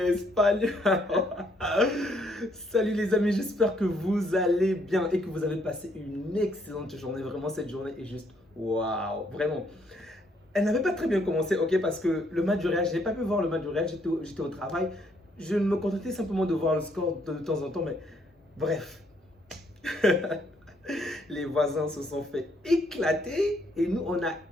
Salut les amis, j'espère que vous allez bien et que vous avez passé une excellente journée. Vraiment, cette journée est juste waouh, vraiment. Elle n'avait pas très bien commencé, ok, parce que le match du Real, je n'ai pas pu voir le match du Real, j'étais au travail. Je me contentais simplement de voir le score de temps en temps, mais bref. Les voisins se sont fait éclater et nous, on a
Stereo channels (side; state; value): both; normal; correlation 0.70